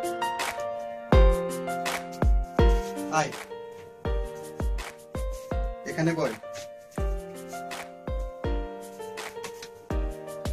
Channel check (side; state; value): both; identical; correlation 1.00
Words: আয় এখানে বল।